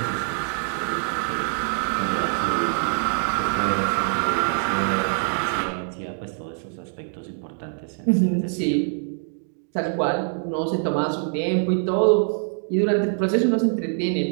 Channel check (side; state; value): left; silent; 60 dB below the other